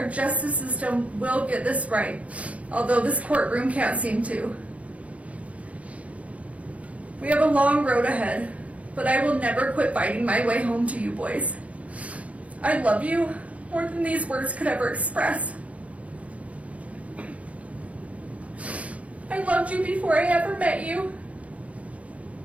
justice system will get this right, although this courtroom can't seem to. We have a long road ahead, but I will never quit fighting my way home to you boys. I love you more than these words could ever express. I loved you before I ever met you.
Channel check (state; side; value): late; left; 0.066 ms